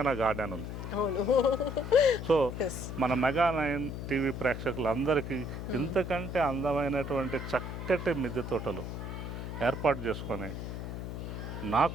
నా గార్డెన్ ఉంది. సో మన MEGA9 టీవీ ప్రేక్షకులందరికీ ఇంతకంటే అందమైనటువంటి చక్కటి మిద్దె తోటలు ఏర్పాటు చేసుకొని నా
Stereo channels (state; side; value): noise; left; hum, 6 dB below the sound